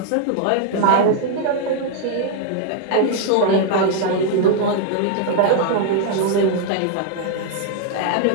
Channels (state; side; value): different; both; correlation -0.01